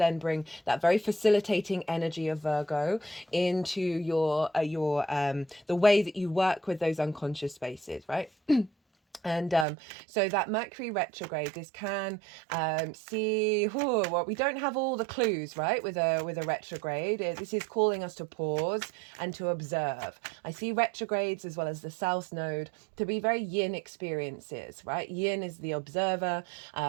bring that very facilitating energy of Virgo into your the way that you work with those unconscious spaces, right? And so that Mercury retrograde, this can see, well, we don't have all the clues, right, with a retrograde. This is calling us to pause and to observe. I see retrogrades as well as the South Node to be very yin experiences, right? Yin is the observer,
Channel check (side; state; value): left; drops out; at 9.7 s